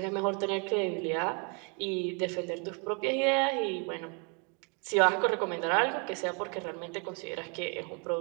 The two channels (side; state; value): left; quieter; 36.2 dB